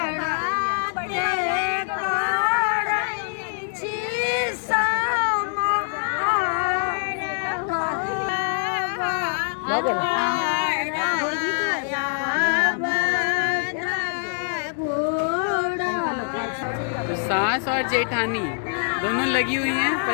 तो सास और जेठानी दोनों लगी हुई हैं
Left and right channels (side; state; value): right; silent; digital silence